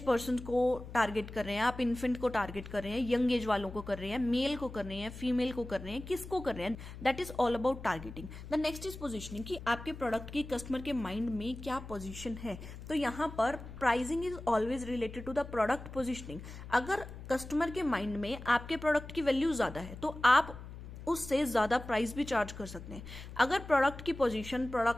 पर्सन को टारगेट कर रहे हैं, आप इन्फेंट को टारगेट कर रहे हैं, यंग एज वालों को कर रहे हैं, मेल को कर रहे हैं, फीमेल को कर रहे हैं, किसको कर रहे हैं। That is all about targeting. The next is positioning कि आपके प्रोडक्ट की कस्टमर के माइंड में क्या पोजिशन है। तो यहां पर pricing is always related to the product positioning. अगर कस्टमर के माइंड में आपके प्रोडक्ट की वैल्यू ज्यादा है तो आप उससे ज्यादा प्राइस भी चार्ज कर सकते हैं। अगर प्रोडक्ट की पोजीशन,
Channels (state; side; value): noise; left; hum, 12 dB below the sound